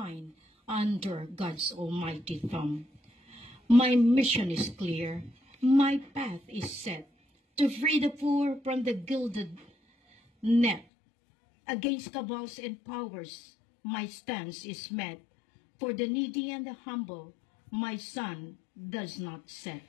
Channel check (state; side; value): drops out; right; at 10.9 s